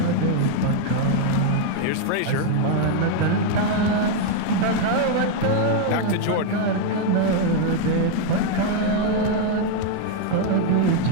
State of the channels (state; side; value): different; both; correlation 0.01